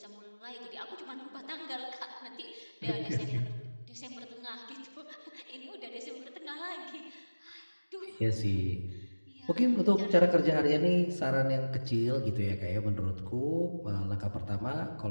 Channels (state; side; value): inverted; both; correlation -1.00